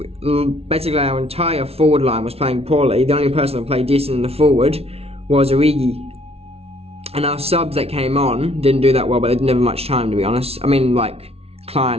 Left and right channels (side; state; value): left; late; 0.30 ms